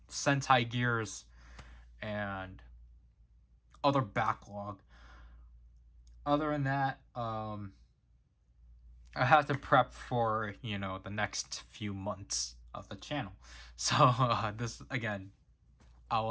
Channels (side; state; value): both; identical; correlation 1.00